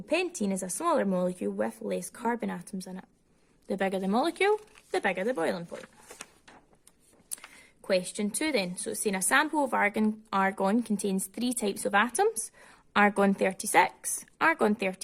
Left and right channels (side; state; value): both; identical; correlation 1.00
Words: is a smaller molecule with less carbon atoms in it. The bigger the molecule, the bigger the boiling point. Question 2 then. So it's saying a sample of argon contains 3 types of atoms: argon 36, argon